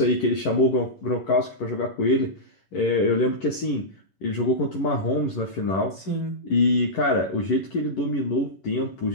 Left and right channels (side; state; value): right; late; 11 ms